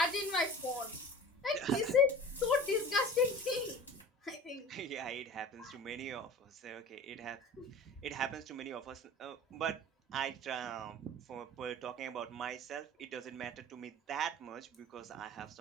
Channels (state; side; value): normal; both; correlation 0.39